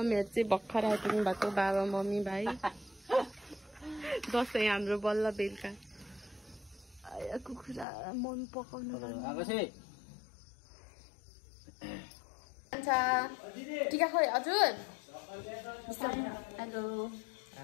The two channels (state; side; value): drops out; right; at 7.9 s